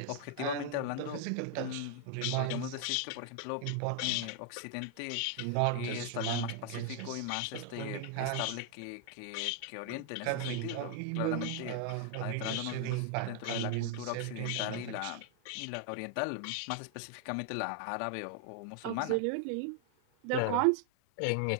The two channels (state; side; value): different; both; correlation 0.00